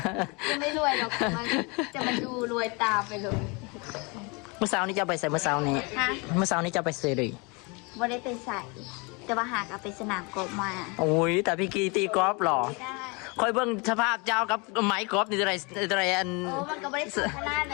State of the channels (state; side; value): quieter; right; 29.5 dB